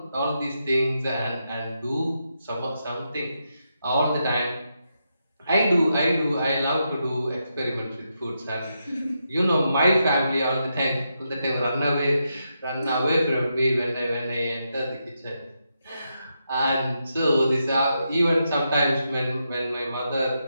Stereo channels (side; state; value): both; inverted; correlation -0.84